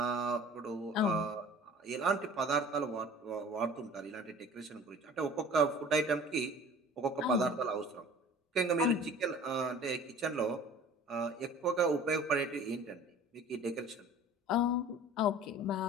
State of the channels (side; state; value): both; normal; correlation 0.45